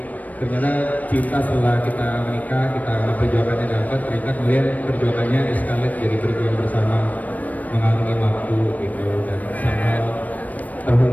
ternyata cinta setelah kita menikah, kita perjuangannya dapat, ternyata kemudian perjuangannya escalate jadi berjuang bersama mengarungi waktu gitu, dan sama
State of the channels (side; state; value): right; late; 0.075 ms